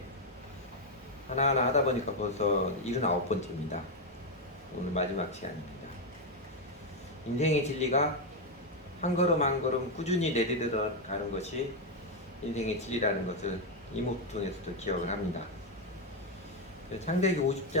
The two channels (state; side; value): normal; both; correlation 0.04